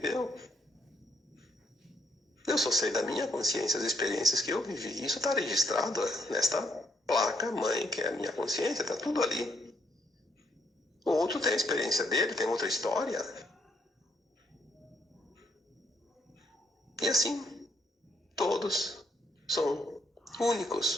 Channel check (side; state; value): both; normal; correlation 0.72